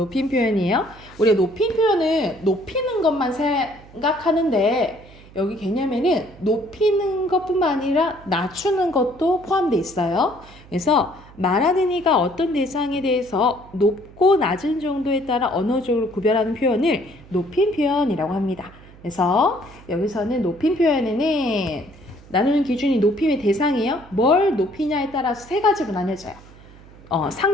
표현이에요. 우리가 높임 표현을 높이는 것만 생각하는데 여기 개념에는 높이는 것뿐만 아니라 낮추는 것도 포함되어 있어요. 그래서 말하는 이가 어떤 대상에 대해서 높고 낮은 정도에 따라 언어적으로 구별하는 표현을 높임 표현이라고 합니다. 그래서 여기서는 높임 표현에는 나누는 기준이 높임의 대상이에요. 뭘 높이냐에 따라서 세 가지로 나뉘어져요.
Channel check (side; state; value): right; noise; hum, 22 dB below the sound